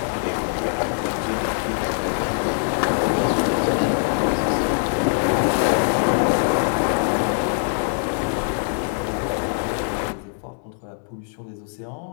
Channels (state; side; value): silent; right; 64 dB below the other